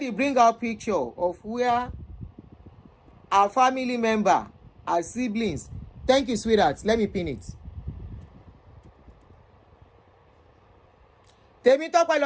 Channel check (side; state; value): both; identical; correlation 1.00